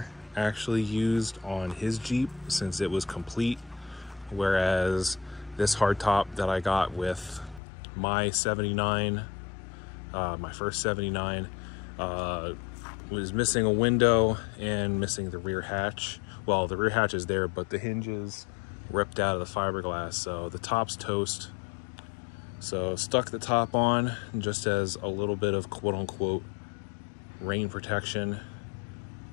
actually used on his Jeep since it was complete, whereas this hardtop that I got with my 79, my first 79, was missing a window and missing the rear hatch. Well, the rear hatch is there, but the hinges ripped out of the fiberglass, so the top's toast. So stuck the top on just as a little bit of quote-unquote rain protection,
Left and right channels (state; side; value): drops out; right; at 7.6 s